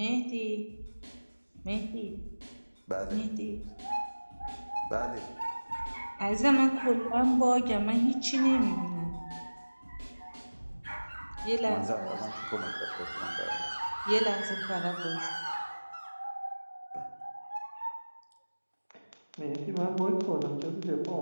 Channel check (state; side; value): inverted; both; correlation -1.00